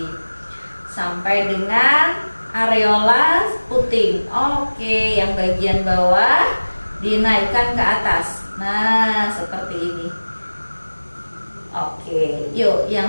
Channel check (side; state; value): both; inverted; correlation -1.00